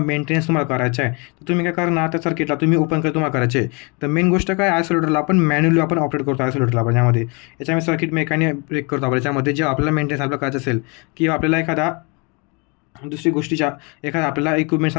मेंटेनन्स करायचं आहे, तर तुम्ही काय करणार? त्या सर्किटला तुम्ही ओपन तुम्हाला करायचे. तर मेन गोष्ट काय, आयसोलेटरला आपण मॅन्युअली आपण ऑपरेट करतो. आयसोलेटरला आपण याच्यामध्ये सर्किट मेकॅनिक ब्रेक करतो आपण याच्यामध्ये. जे आपल्याला मेंटेनन्स आपल्याला करायचं असेल किंवा आपल्याला एखादा दुसरी गोष्टीच्या एखादा आपल्याला इक्विपमेंट्स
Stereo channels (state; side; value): quieter; right; 31.4 dB